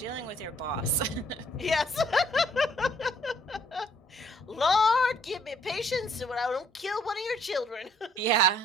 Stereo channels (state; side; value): normal; both; correlation 0.64